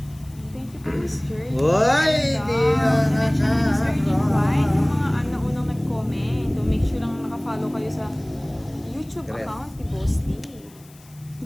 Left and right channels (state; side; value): noise; left; hiss, 26 dB below the sound